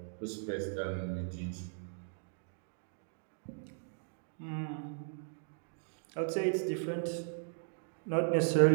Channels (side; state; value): left; silent; digital silence